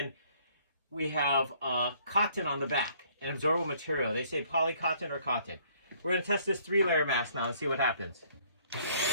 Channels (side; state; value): both; inverted; correlation -0.62